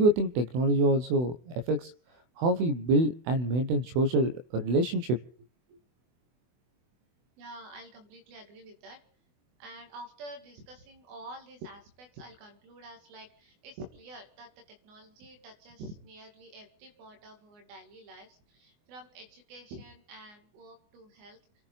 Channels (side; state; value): left; late; 24 ms